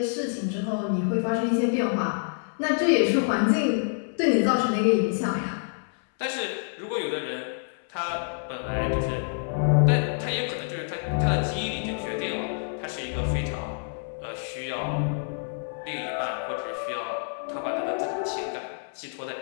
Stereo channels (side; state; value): right; silent; 60 dB below the other